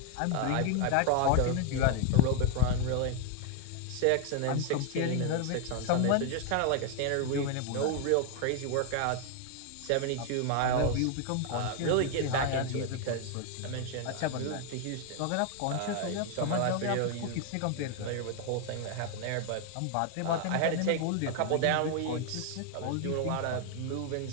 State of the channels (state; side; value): different; both; correlation 0.01